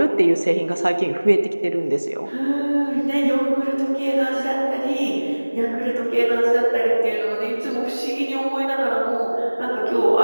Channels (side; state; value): both; inverted; correlation -1.00